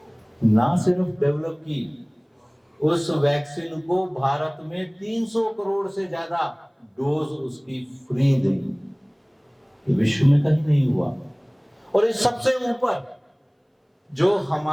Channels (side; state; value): both; identical; correlation 1.00